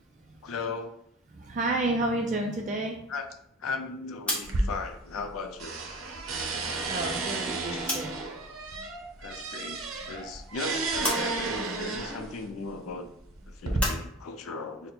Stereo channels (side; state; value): both; normal; correlation 0.35